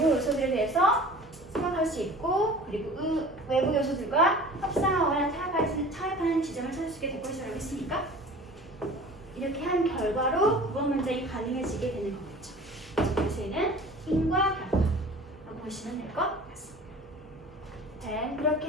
요소들에 대해서 생각할 수 있고 그리고 외부 요소들과 협상하거나 타협하는 지점을 찾을 수 있게 될 것이라고 했으니까 이렇게 한 결과로 9번 문장이 가능해지게 되는 거겠죠. 그래서 얘는 인과 결과라고 보시면 될 것 같습니다. 네,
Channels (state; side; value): normal; both; correlation 0.42